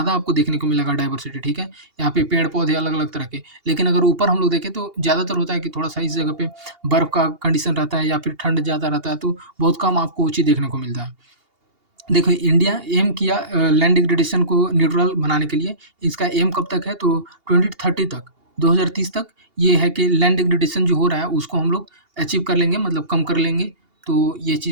आपको देखने को मिलेगा डाइवर्सिटी, ठीक है? यहाँ पे पेड़-पौधे अलग-अलग तरह के। लेकिन अगर ऊपर हम लोग देखें तो ज़्यादातर होता है कि थोड़ा-सा इस जगह पे बर्फ़ का कंडीशन रहता है या फिर ठंड ज़्यादा रहता है, तो बहुत कम आपको ऊँची देखने को मिलता है। देखो इंडिया एम किया लैंड डिग्रेडेशन को न्यूट्रल बनाने के लिए। इसका एम कब तक है तो 2030 तक, 2030 तक ये है कि लैंड डिग्रेडेशन जो हो रहा है उसको हम लोग अचीव कर लेंगे, मतलब कम कर लेंगे। तो ये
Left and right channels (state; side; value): late; left; 2.8 ms